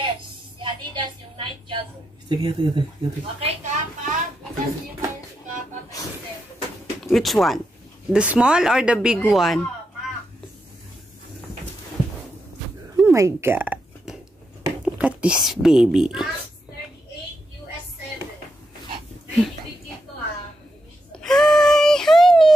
Si Adidas yung night jogger. Sige. Okay, Kappa. Bukas niyo tayo si Kappa, 37. Which one? The small or the big one? Oh my God. Look at this baby. Max 38, US 7. Ready bigyan to ha. Hi,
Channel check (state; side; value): normal; both; correlation 0.84